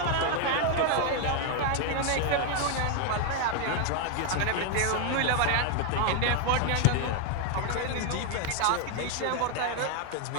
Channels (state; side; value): different; both; correlation 0.00